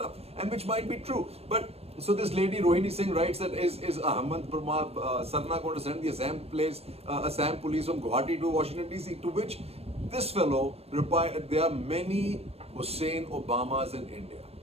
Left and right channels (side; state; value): left; late; 0.29 ms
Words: and which might be true. But so this lady Rohini Singh writes that is Ahmad Sarna going to send the Assam police from Guwahati to Washington DC? To which this fellow replied, there are many Hussein Obamas in India.